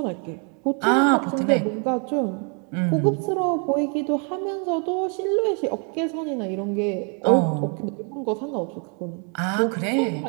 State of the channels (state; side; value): quieter; left; 38.6 dB